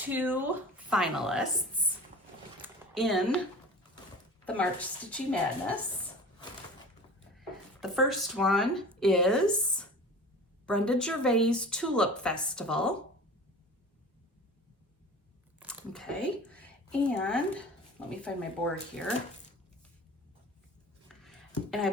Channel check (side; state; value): both; normal; correlation 0.38